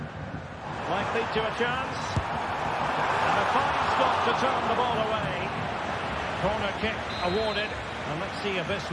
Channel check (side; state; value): both; identical; correlation 1.00